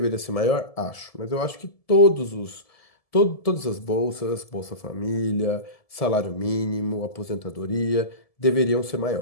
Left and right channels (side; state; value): right; late; 1.7 ms